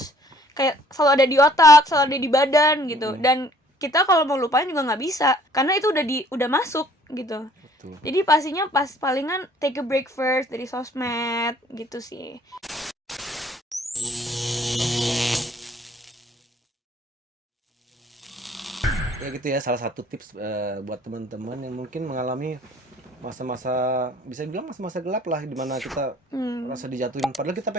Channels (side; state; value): both; normal; correlation 0.58